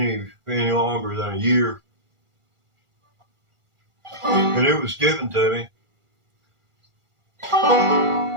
longer than a year. And it was given to me.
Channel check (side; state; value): left; late; 1.4 ms